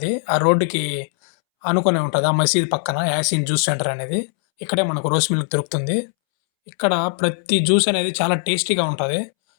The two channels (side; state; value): right; silent; 66 dB below the other